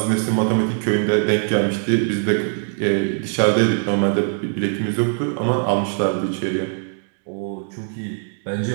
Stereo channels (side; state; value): left; silent; 64 dB below the other